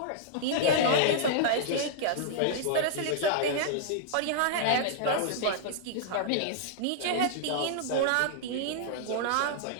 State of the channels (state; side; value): different; both; correlation -0.01